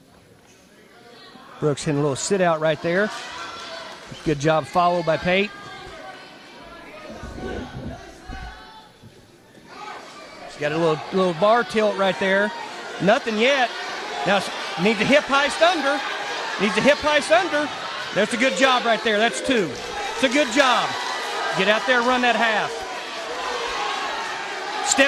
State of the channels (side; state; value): both; identical; correlation 1.00